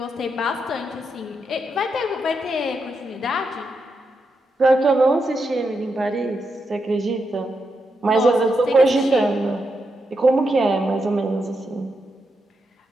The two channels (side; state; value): both; normal; correlation 0.84